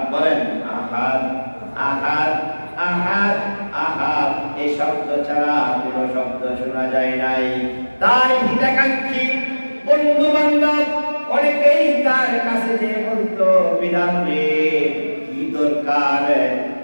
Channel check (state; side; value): inverted; both; correlation -1.00